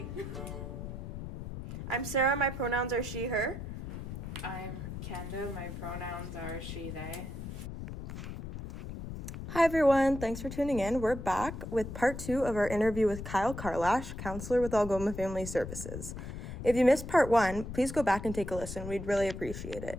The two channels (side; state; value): left; noise; rumble, 8 dB below the sound